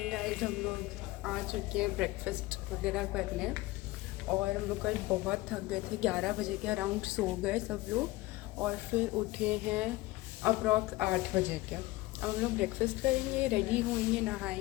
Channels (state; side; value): quieter; right; 19.4 dB